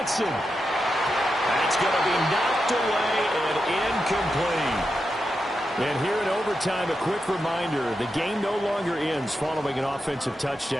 That's going to be knocked away and incomplete. And here in overtime, a quick reminder, the game no longer ends following an offensive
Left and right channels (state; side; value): normal; both; correlation 0.88